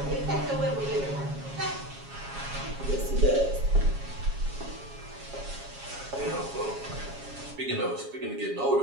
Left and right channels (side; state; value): left; late; 7.3 ms